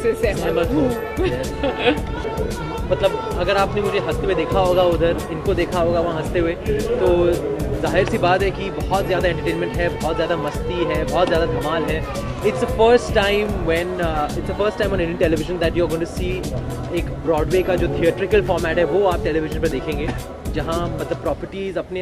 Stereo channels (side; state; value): both; identical; correlation 1.00